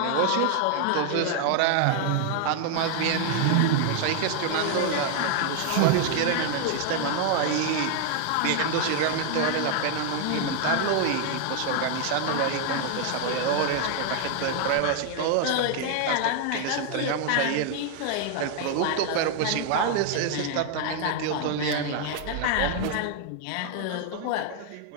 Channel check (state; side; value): different; both; correlation 0.00